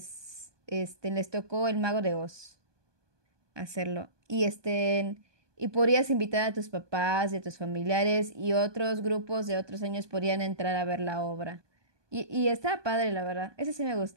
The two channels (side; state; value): left; late; 1.2 ms